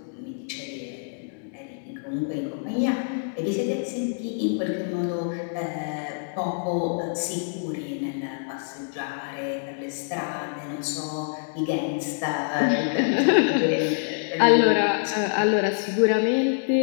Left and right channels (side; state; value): right; silent; digital silence